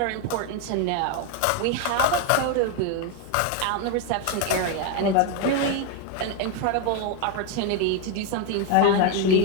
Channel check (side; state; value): both; different; correlation 0.01